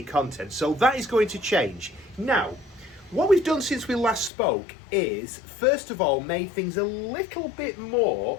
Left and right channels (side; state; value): right; drops out; at 4.3 s